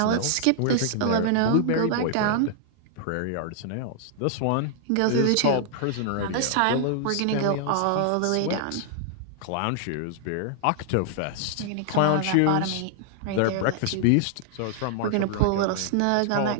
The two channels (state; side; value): different; both; correlation -0.01